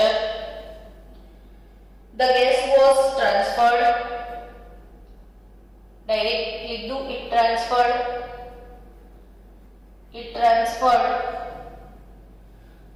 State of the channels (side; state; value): both; identical; correlation 1.00